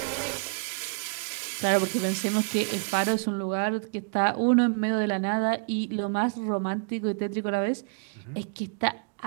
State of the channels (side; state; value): left; quieter; 39.6 dB